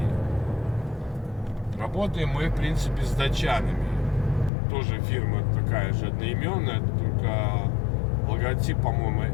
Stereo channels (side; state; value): right; drops out; at 4.5 s